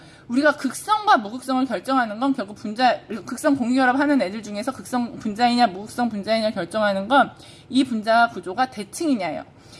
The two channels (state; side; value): identical; both; correlation 1.00